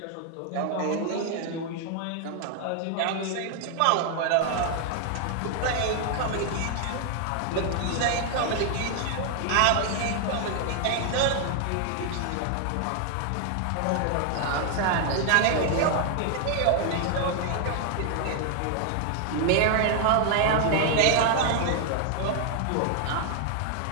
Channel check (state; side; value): different; both; correlation 0.00